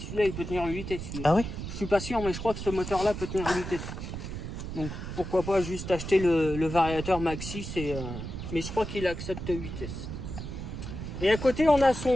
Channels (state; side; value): noise; right; rumble, 7 dB below the sound